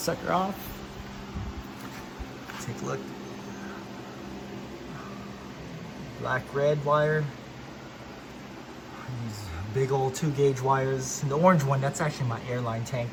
off. Take a look. Black red wire. These big old 2-gauge wires. And the orange one, that's actually my airline tank.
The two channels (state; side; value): identical; both; correlation 1.00